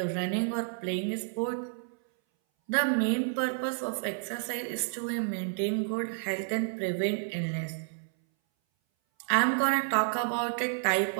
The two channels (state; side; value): silent; left; 58 dB below the other